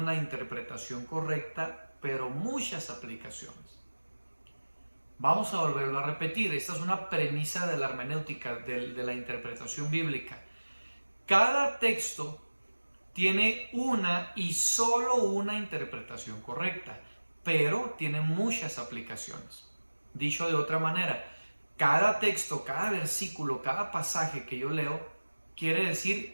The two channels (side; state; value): both; inverted; correlation -1.00